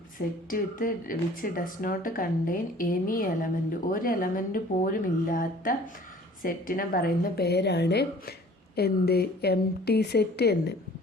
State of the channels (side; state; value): both; normal; correlation 0.50